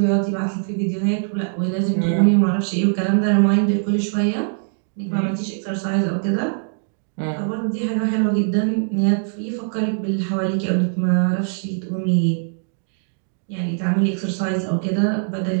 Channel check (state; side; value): silent; left; digital silence